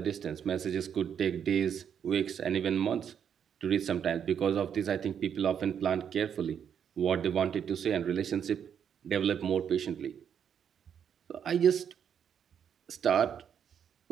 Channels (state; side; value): quieter; left; 8.2 dB